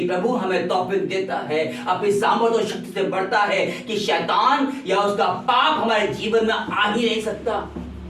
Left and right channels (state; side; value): identical; both; correlation 1.00